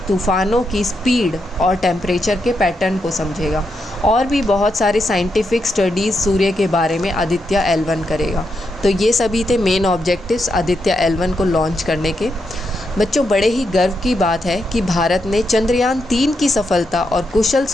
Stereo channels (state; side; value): normal; both; correlation 0.83